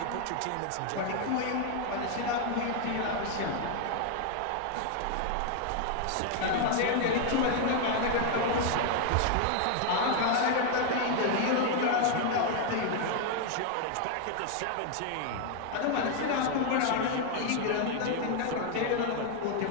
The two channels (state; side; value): different; both; correlation 0.00